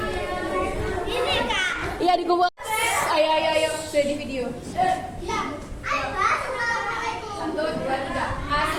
Iya di gua. Ayo, sudah di video. 1, 2, 3.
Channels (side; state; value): both; identical; correlation 1.00